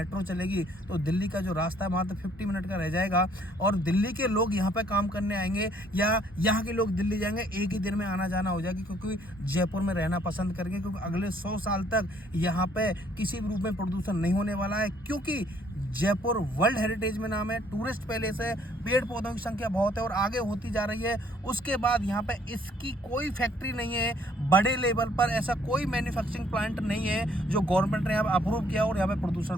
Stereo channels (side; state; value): both; normal; correlation 0.63